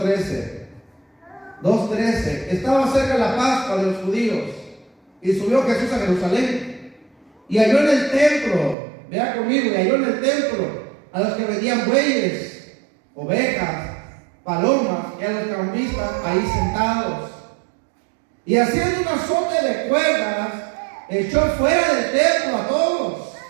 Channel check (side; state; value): left; drops out; at 8.8 s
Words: 2:13. Estaba cerca la Pascua de los judíos y subió Jesús a Jerusalén y halló en el templo, vea conmigo, y halló en el templo a los que vendían bueyes, ovejas, palomas y a los cambistas ahí sentados. Y haciendo un azote de cuerdas, echó fuera del templo a todos.